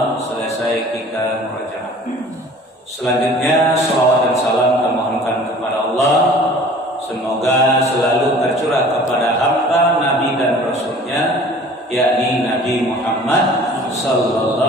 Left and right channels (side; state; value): both; normal; correlation 0.47